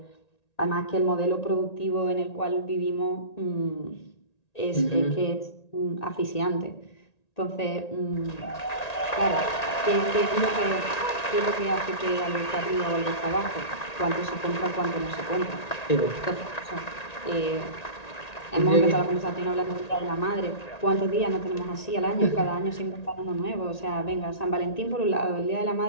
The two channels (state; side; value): late; right; 1.9 ms